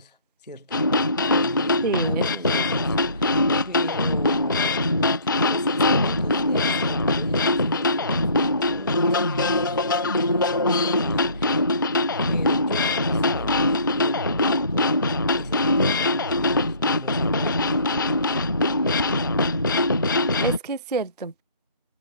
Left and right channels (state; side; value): inverted; both; correlation -0.53